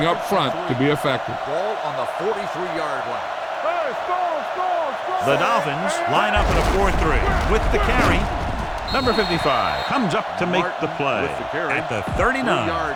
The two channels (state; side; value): identical; both; correlation 1.00